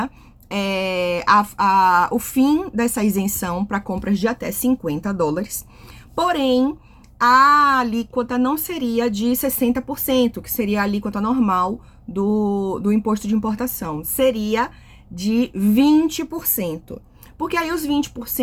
o fim dessa isenção para compras de até $50, porém, a alíquota não seria de 60%, que seria a alíquota normal do imposto de importação. Seria de 20%. Porque aí os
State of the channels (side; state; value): both; identical; correlation 1.00